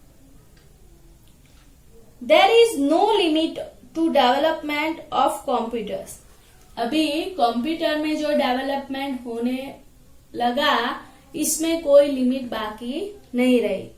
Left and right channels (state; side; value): identical; both; correlation 1.00